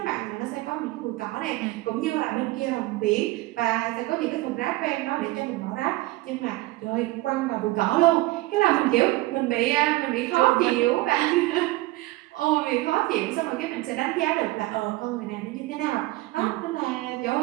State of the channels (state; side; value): quieter; left; 19.2 dB